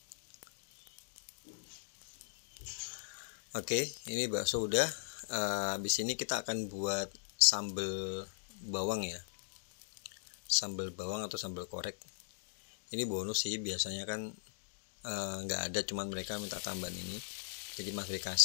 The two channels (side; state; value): right; silent; digital silence